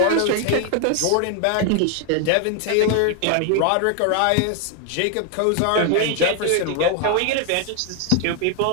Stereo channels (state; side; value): different; both; correlation 0.00